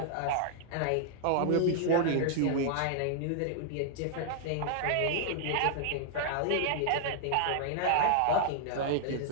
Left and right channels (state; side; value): different; both; correlation -0.01